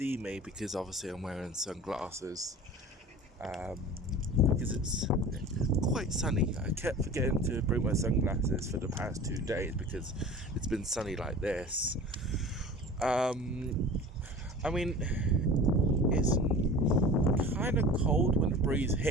me because obviously I'm wearing sunglasses because it's quite sunny. I kept forgetting to bring my sunglasses for the past 2 days because it's been sunny like this. I mean, it's kind of cold when the breeze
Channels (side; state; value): both; normal; correlation 0.39